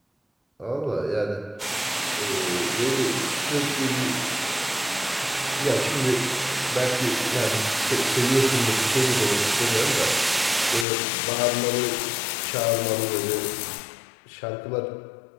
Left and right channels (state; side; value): drops out; right; at 10.9 s